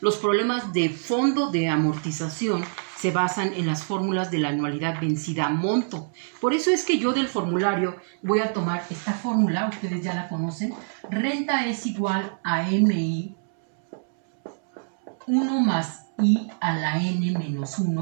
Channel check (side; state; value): left; silent; 61 dB below the other